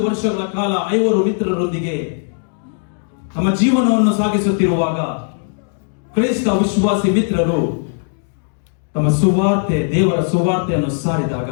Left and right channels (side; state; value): right; silent; digital silence